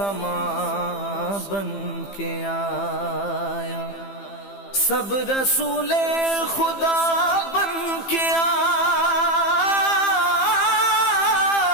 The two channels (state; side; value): late; right; 15 ms